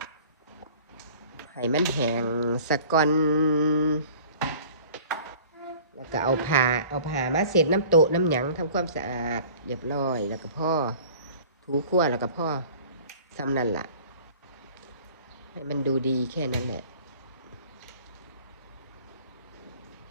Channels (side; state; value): both; inverted; correlation -0.47